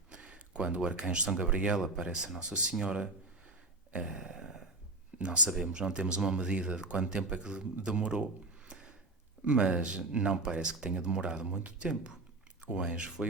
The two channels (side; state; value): left; quieter; 3.0 dB